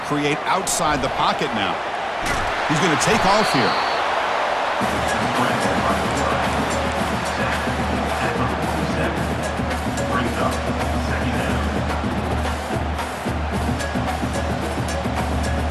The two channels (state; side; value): identical; both; correlation 1.00